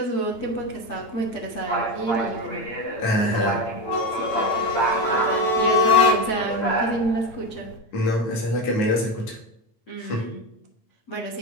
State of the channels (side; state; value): right; late; 9.2 ms